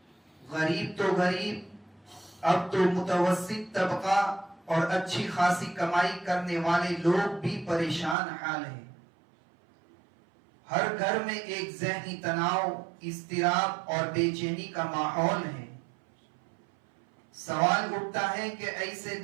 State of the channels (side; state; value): left; drops out; at 8.2 s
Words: غریب تو غریب، اب تو متوسط طبقہ اور اچھی خاصی کمائی کرنے والے لوگ بھی پریشان حال ہیں. ہر گھر میں ایک ذہنی تناؤ، اضطراب اور بے چینی کا ماحول ہے. سوال اٹھتا ہے کہ ایسے